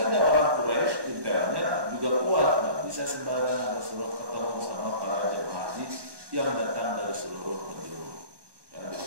orang Quraisy intelnya juga kuat, nggak bisa sembarangan Rasulullah ketemu sama para jemaah haji yang datang dari seluruh penjuru. Ya, di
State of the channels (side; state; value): left; late; 1.2 ms